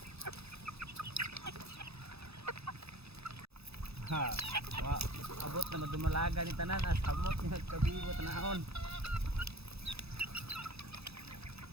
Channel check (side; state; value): left; late; 0.78 ms